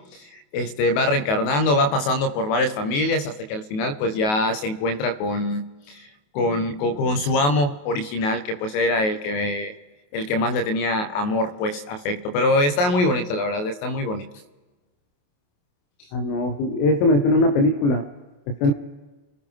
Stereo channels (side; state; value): right; late; 28 ms